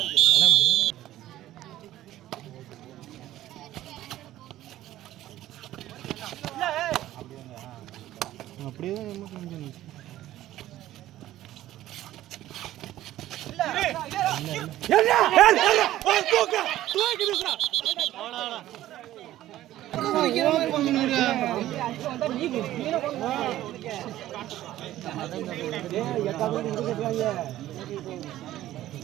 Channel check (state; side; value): quieter; left; 14.2 dB